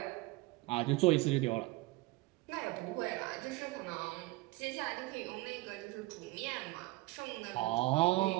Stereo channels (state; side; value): quieter; left; 21.2 dB